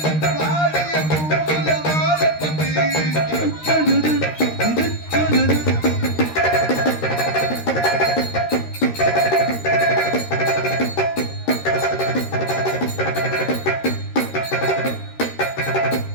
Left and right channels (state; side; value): late; right; 13 ms